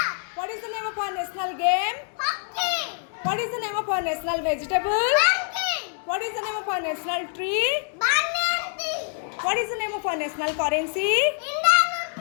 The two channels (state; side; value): silent; right; 61 dB below the other